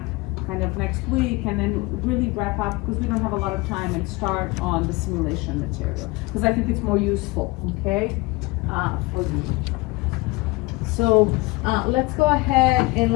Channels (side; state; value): right; quieter; 23.0 dB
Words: kind of next week, and then really wrap up, because we don't have a lot of time, and start on the simulation material, because I think it's more useful, okay? For you. So, let's go ahead and